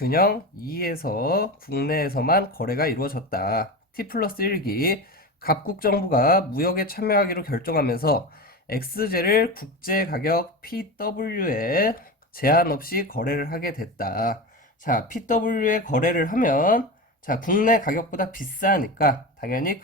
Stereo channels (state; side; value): normal; both; correlation 0.24